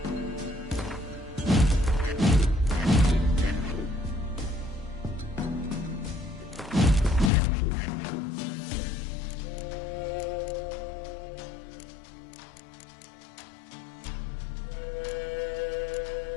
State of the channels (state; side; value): drops out; right; at 7.3 s